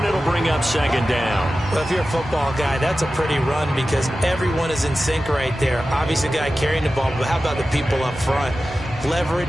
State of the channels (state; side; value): normal; both; correlation 0.94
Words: it'll bring up 2nd down. Well, if you're a football guy, that's a pretty run because everyone is in sync right there. Obviously, the guy carrying the ball, but how about the people up front?